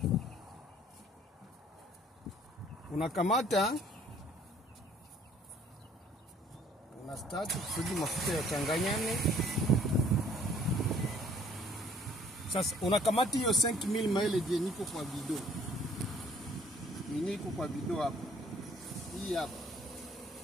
unakamata, unastart kusudi mafuta yachanganyane. Sasa unakamata hiyo 5 mil mileage yenye iko kwa bidon. Yenye iko kwa bidon hapa. Hii hapa.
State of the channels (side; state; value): both; normal; correlation 0.58